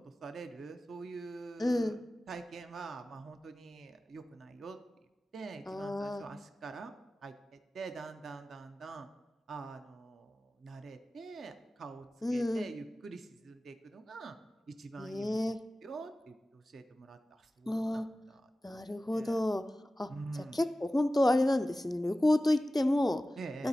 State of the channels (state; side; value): normal; both; correlation 0.96